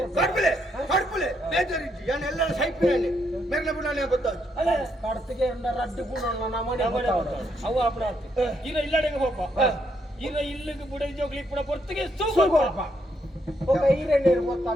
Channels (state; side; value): normal; both; correlation 0.76